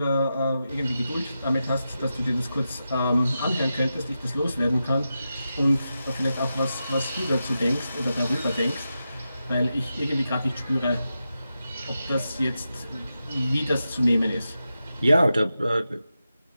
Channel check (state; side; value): inverted; both; correlation -0.90